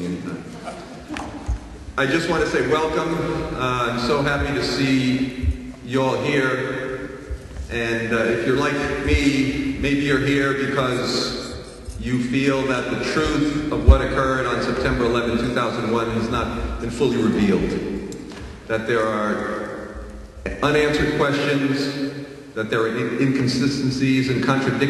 anytime. I just want to say welcome. I'm so happy to see you all here. And if you're like me, maybe you're here because you feel that the truth of what occurred on September 11, 2001 has not been fully revealed. That there are unanswered questions, that there are inconsistencies and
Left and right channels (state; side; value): identical; both; correlation 1.00